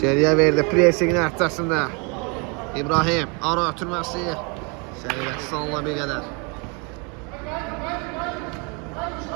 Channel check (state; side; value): quieter; left; 32.6 dB